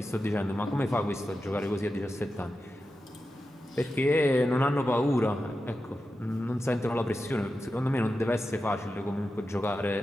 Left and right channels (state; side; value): normal; both; correlation 0.91